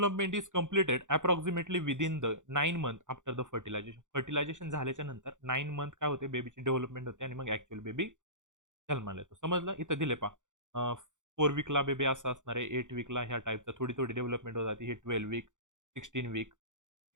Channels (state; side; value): late; left; 0.86 ms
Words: is completed approximately within the 9 month after the fertilisation fertilisation झाल्याच्या नंतर 9 मंथ काय होते बेबीची डेव्हलपमेंट होते आणि मग ऍक्च्युअल बेबी जन्माला येतो समजलं इथं दिले पा 4 वीकला बेबी असं असणार आहे 8 वीकला ह्या टाईपचा थोडी थोडी डेव्हलपमेंट होत जाते ही 12 वीक 16 वीक